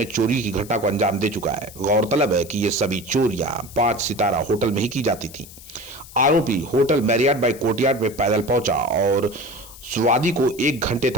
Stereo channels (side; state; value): left; noise; hiss, 18 dB below the sound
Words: चोरी की घटना को अंजाम दे चुका है। गौरतलब है कि ये सभी चोरियां 5 सितारा होटल में ही की जाती थी। आरोपी होटल मैरियट बाय कोर्टयार्ड में पैदल पहुंचा और स्वादी को 1 घंटे